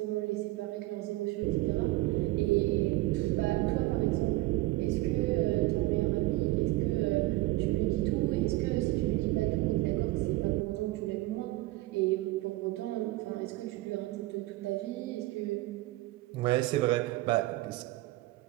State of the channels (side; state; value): left; quieter; 19.3 dB